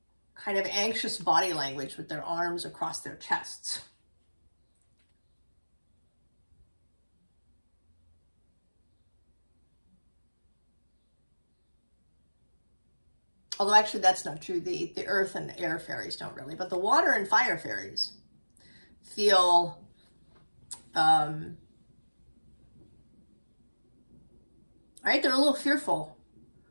of anxious body language with their arms across their chests. Although actually that's not true. The earth and the air fairies don't really, but the water and fire fairies feel right? They're a little fearful.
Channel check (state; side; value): inverted; both; correlation -1.00